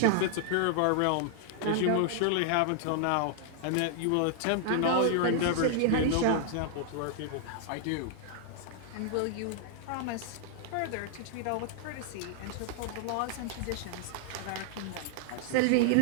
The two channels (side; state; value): both; different; correlation 0.00